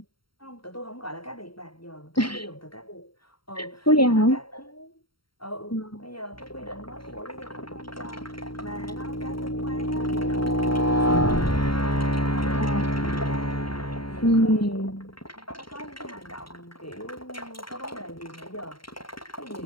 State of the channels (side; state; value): right; late; 0.73 ms